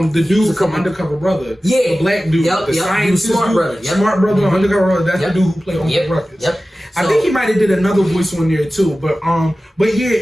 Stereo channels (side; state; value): both; normal; correlation 0.96